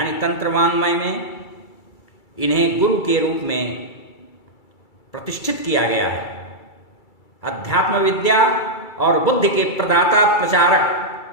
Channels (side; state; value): right; late; 2.3 ms